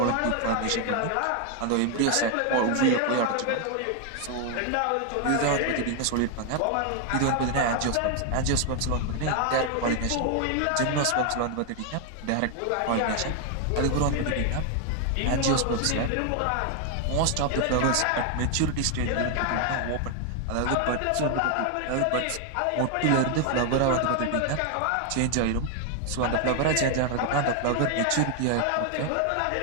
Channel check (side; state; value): both; different; correlation 0.01